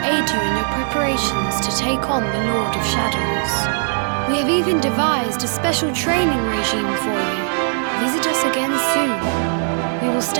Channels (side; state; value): left; silent; digital silence